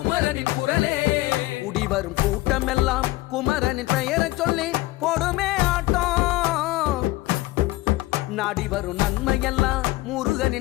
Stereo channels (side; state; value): right; quieter; 18.8 dB